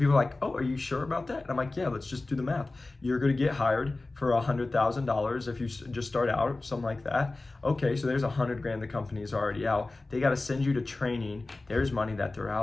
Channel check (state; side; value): quieter; right; 3.2 dB